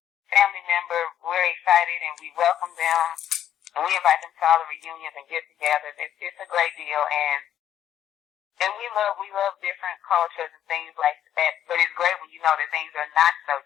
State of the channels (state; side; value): quieter; right; 10.5 dB